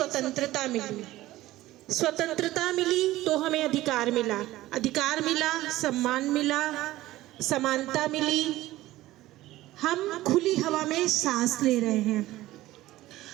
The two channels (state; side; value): quieter; left; 16.4 dB